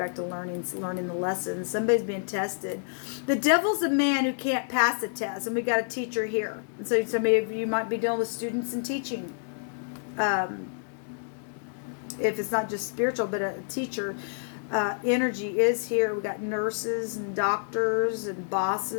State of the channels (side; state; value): right; silent; digital silence